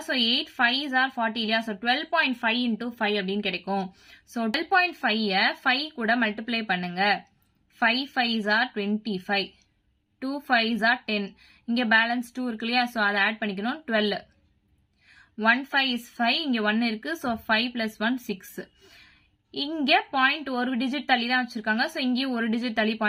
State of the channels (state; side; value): identical; both; correlation 1.00